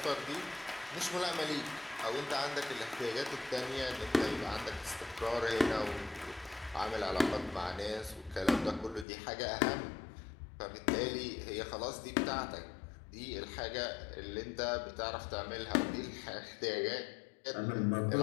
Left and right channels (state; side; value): drops out; right; at 9.1 s